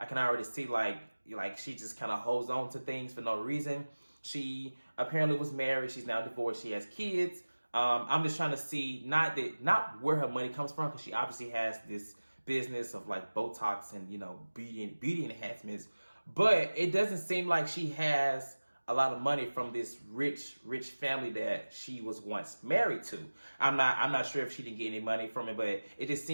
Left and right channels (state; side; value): inverted; both; correlation -1.00